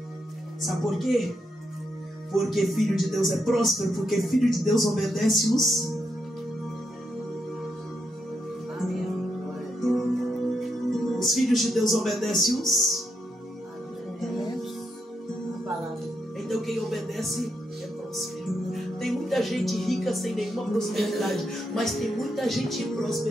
Sabe por quê? Porque filho de Deus é próspero, porque filho de Deus obedece os. Os filhos de Deus obedecem os. Então quem obedece é próspero. Tem muita gente rica sem nenhuma prosperidade, mas tem muita gente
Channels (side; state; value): both; normal; correlation 0.81